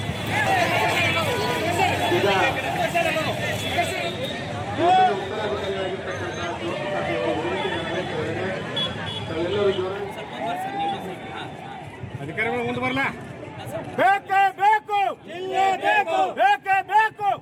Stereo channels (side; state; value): both; identical; correlation 1.00